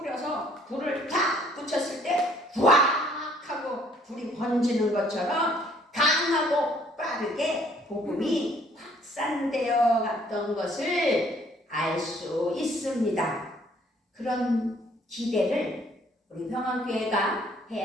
불을 탁 붙였을 때 후악 하고 불이 번지는 것처럼 강하고 빠르게 복음이 확산되어 갔던 것을 알 수 있습니다. 그런 기대를 우리 평안교회가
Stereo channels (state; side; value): normal; both; correlation 0.61